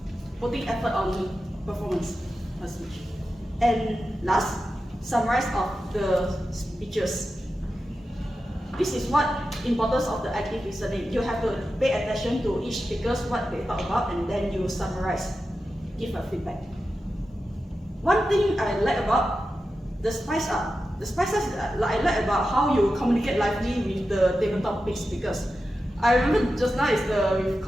putting effort on performance or speech. And last, summarize of the speeches. This is what importance of the active listening. You have to pay attention to each speakers, what they talk about, and then you summarize, give a feedback. One thing I like about the spice up. The spice up I like about how you communicate lively with the tabletop speakers. I remember just now is with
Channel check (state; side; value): normal; both; correlation 0.91